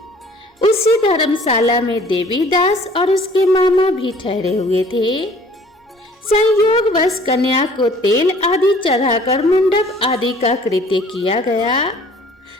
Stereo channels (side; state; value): both; normal; correlation 0.53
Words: उसी धर्मशाला में देवीदास और उसके मामा भी ठहरे हुए थे। संयोगवश कन्या को तेल आदि चढ़ाकर मंडप आदि का कृत्य किया गया